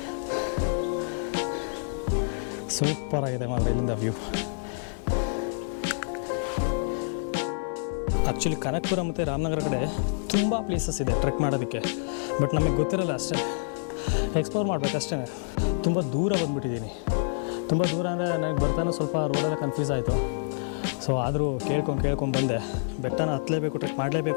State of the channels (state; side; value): silent; right; digital silence